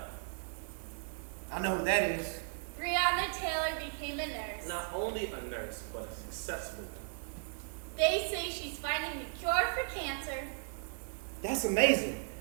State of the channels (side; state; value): left; silent; digital silence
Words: I know who that is. Breonna Taylor became a nurse. Not only a nurse, but a successful one. They say she's finding the cure for cancer. That's amazing.